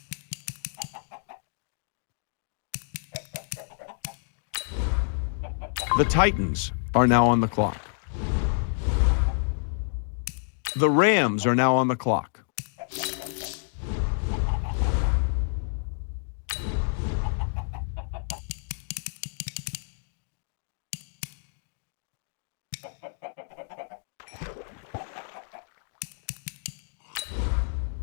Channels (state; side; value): silent; right; digital silence